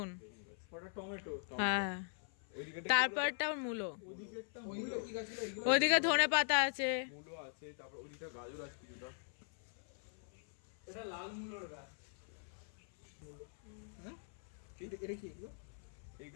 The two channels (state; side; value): silent; right; 50 dB below the other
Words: ওটা টমেটো। হ্যাঁ তারপরটা মূলো, ওইদিকেরটা মূলো। কি গাছ ছিল? ওইদিকে ধনে পাতা আছে। মূলো আছে, তারপর ওদিকটা গাজর আছে কিছুটা। এটা লাল মূলোর গাছ। হ্যাঁ এটা কি এগুলো?